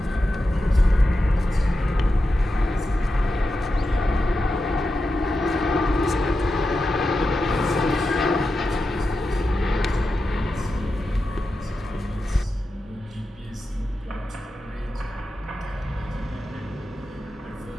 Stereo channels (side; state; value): both; normal; correlation 0.90